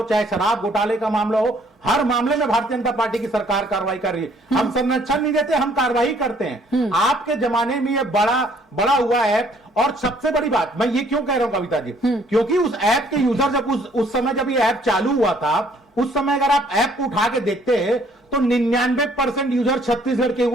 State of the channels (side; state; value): both; normal; correlation 0.62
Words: चाहे शराब घोटाले का मामला हो, हर मामले में भारतीय जनता पार्टी की सरकार कार्रवाई कर रही है। हम संरक्षण नहीं देते, हम कार्रवाई करते हैं। आपके जमाने में ये बड़ा हुआ ऐप, और सबसे बड़ी बात मैं ये क्यों कह रहा हूं कविता जी, क्योंकि उस ऐप के यूजर जब उस समय जब ये ऐप चालू हुआ था, उस समय अगर आप ऐप को उठा के देखते हैं तो 99% यूजर छत्तीसगढ़ के